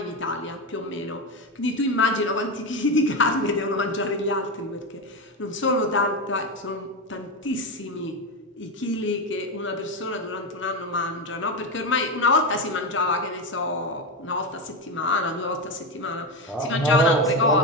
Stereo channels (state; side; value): normal; both; correlation 0.14